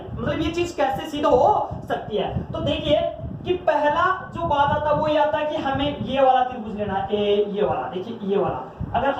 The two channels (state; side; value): identical; both; correlation 1.00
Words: मतलब ये चीज कैसे सिद्ध हो सकती है। तो देखिए कि पहला जो बात आता है वो ये आता है कि हमें ये वाला त्रिभुज लेना है, ये वाला, देखिए ये वाला। अगर